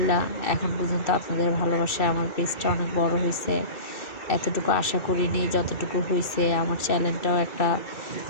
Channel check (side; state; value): right; late; 2.3 ms